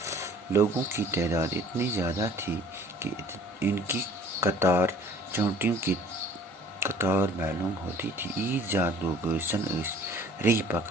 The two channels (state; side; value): normal; both; correlation 0.52